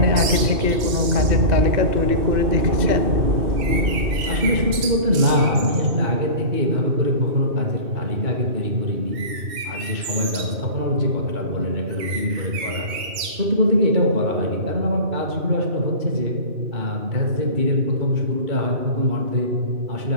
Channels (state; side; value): late; left; 2.6 ms